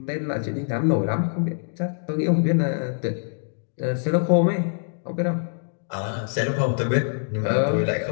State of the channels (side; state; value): right; silent; digital silence